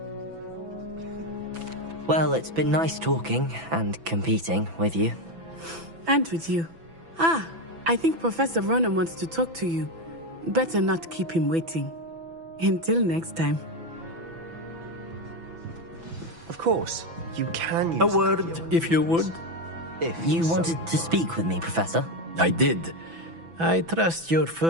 Well, it's been nice talking and competing with you. And with you. Ah, I think Professor Ronan wants to talk to you. Better not keep him waiting. Until next time. Of course, you can use A word, if you would. If You so wanted to speak with me, Professor? I did. I trust your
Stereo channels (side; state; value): left; late; 6.0 ms